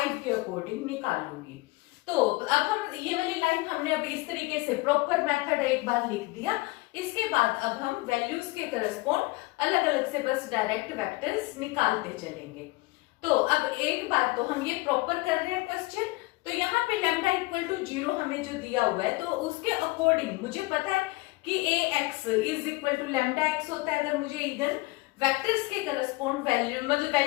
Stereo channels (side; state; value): right; quieter; 22.6 dB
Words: के अकॉर्डिंग निकालूंगी। तो अब हम ये वाली लाइन हमने अब इस तरीके से प्रॉपर मेथड एक बार लिख दिया। इसके बाद अब हम वैल्यूज के करस्पॉन्ड अलग अलग से बस डायरेक्ट वेक्टर्स निकालते चलेंगे। तो अब एक बार तो हम ये प्रॉपर कर रहे हैं क्वेश्चन। तो यहाँ पे लैम्डा इक्वल टू 0 हमें जो दिया हुआ है तो उसके अकॉर्डिंग मुझे पता है कि ax is equal to lambda x होता है। अगर मुझे इगन वेक्टर्स के करस्पॉन्ड वैल्यू मतलब